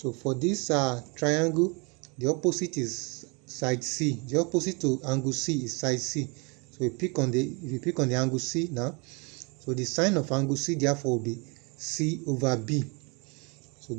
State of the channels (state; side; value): quieter; left; 30.9 dB